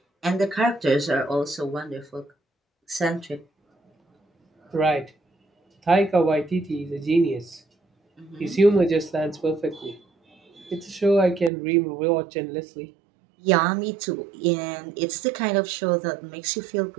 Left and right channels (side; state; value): left; drops out; at 11.5 s